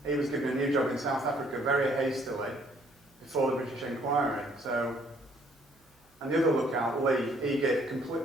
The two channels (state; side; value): normal; both; correlation 0.64